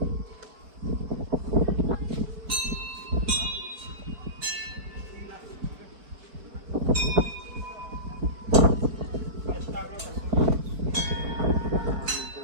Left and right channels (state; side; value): late; left; 4.7 ms